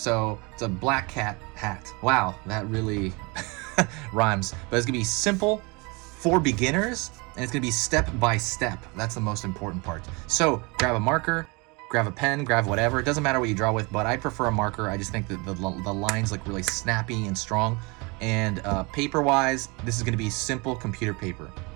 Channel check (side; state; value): left; quieter; 28.0 dB